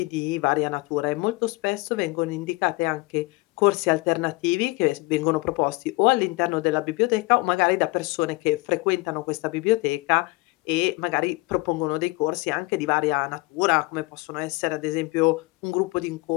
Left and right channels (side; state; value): right; quieter; 23.9 dB